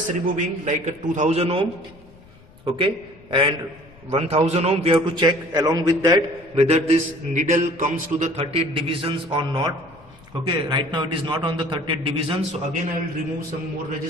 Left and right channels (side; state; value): left; noise; rumble, 25 dB below the sound